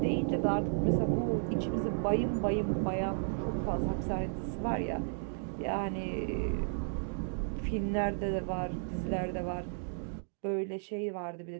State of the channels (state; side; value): silent; left; digital silence